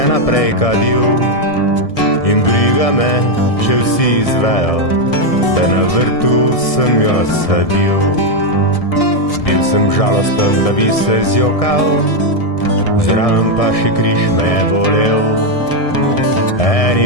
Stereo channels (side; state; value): right; late; 1.6 ms